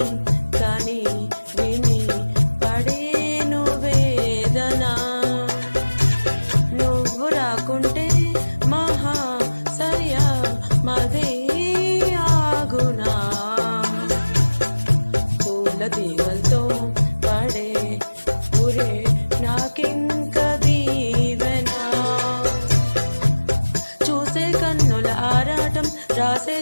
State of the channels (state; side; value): inverted; both; correlation -1.00